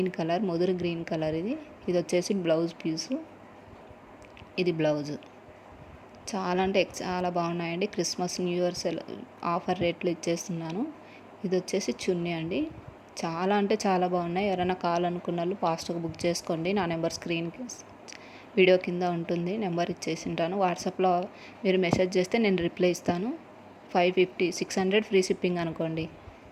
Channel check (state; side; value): identical; both; correlation 1.00